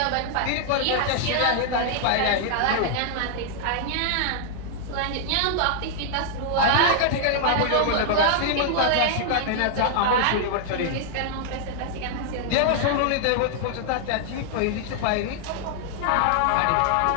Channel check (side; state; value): both; different; correlation -0.01